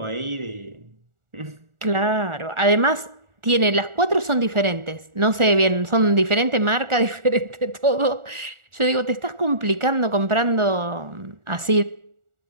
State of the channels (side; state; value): left; late; 1.4 ms